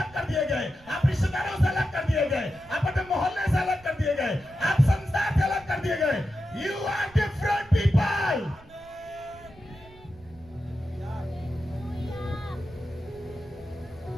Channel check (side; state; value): right; noise; rumble, 24 dB below the sound